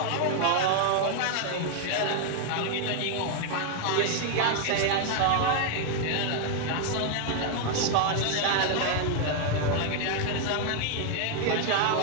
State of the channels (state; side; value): different; both; correlation 0.00